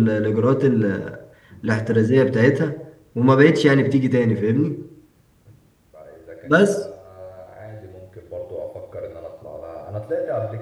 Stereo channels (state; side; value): identical; both; correlation 1.00